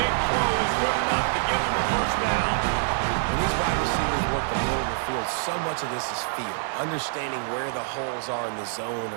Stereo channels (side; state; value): left; silent; 61 dB below the other